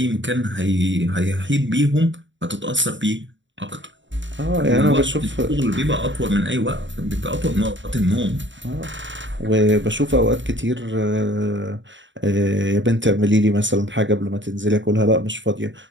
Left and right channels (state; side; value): late; left; 0.54 ms